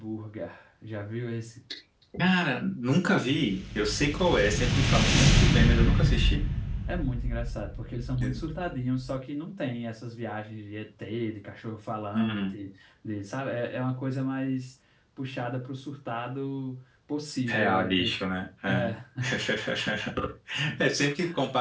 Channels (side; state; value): both; identical; correlation 1.00